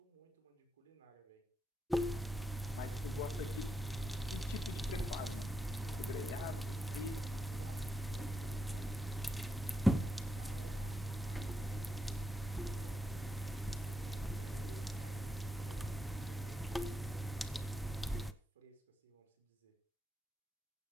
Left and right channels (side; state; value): both; normal; correlation 0.85